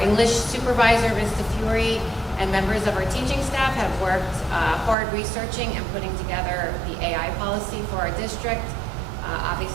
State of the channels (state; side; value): drops out; left; at 5.0 s